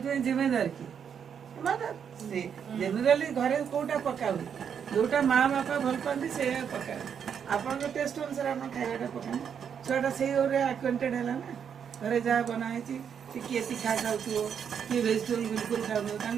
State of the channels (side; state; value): left; quieter; 7.7 dB